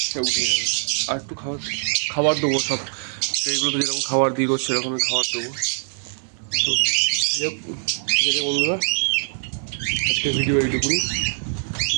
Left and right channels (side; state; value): left; silent; 64 dB below the other